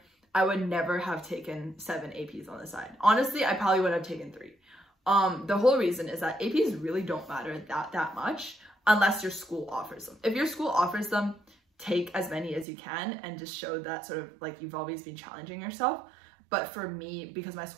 I would never have taken 7 APs on the side. Honestly, I probably would have taken 3. The whole reason is that APs really don't matter that much unless your school offers them. If your school offers them, take as many as you can and just show that sort of like you've always been challenging yourself. But for me, because my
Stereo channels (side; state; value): left; drops out; at 12.7 s